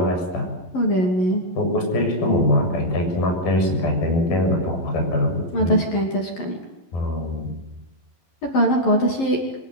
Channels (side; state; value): right; late; 11 ms